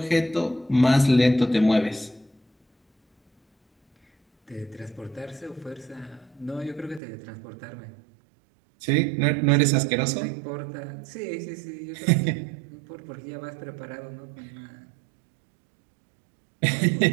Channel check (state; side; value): drops out; left; at 7.0 s